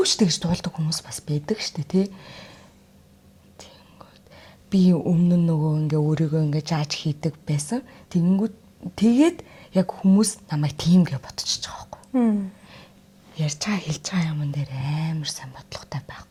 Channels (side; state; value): both; identical; correlation 1.00